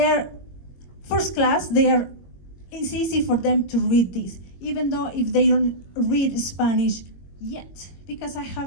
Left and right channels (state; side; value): late; right; 21 ms